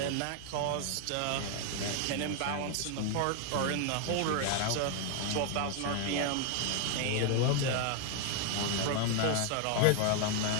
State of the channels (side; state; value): both; different; correlation 0.00